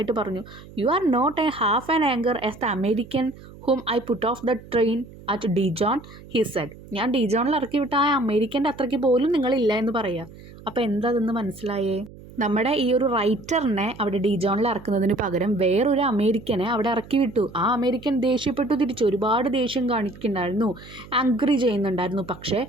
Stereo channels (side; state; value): right; noise; hum, 19 dB below the sound